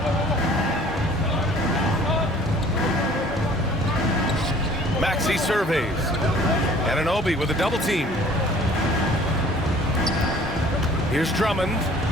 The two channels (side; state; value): both; normal; correlation 0.52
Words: Maxey surveys. Anunoby with a double team. Here's Drummond.